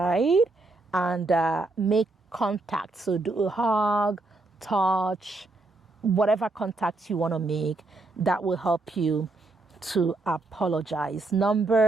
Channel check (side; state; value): left; quieter; 3.1 dB